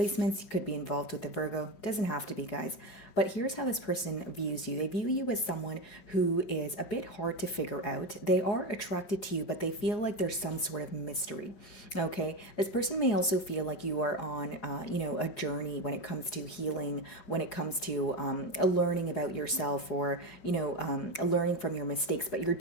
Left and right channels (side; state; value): right; late; 4.9 ms